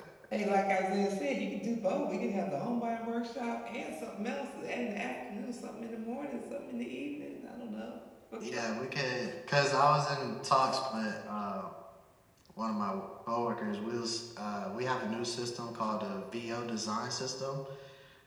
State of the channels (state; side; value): identical; both; correlation 1.00